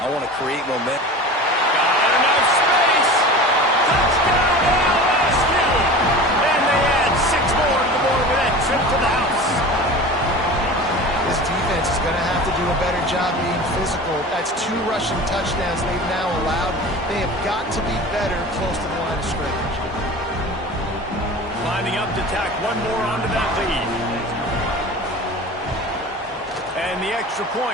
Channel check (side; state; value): both; normal; correlation 0.36